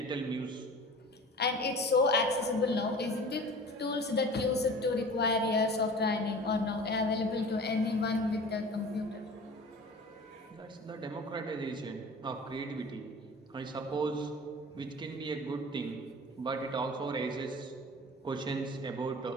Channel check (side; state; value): both; normal; correlation 0.40